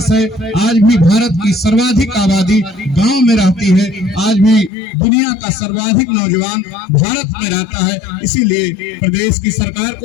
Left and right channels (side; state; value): right; drops out; at 4.7 s